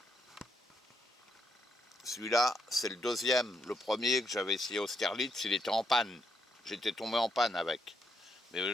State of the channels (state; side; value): normal; both; correlation 0.77